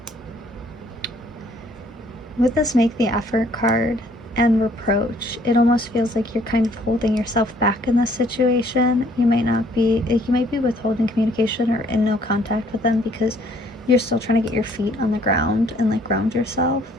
with this make the effort card and reproach, it almost feels like you're kind of holding yourself back in this situation. You might be withholding communication or in no contact with them because you're still trying to get your feet on the ground and like ground yourself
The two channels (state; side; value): normal; both; correlation 0.62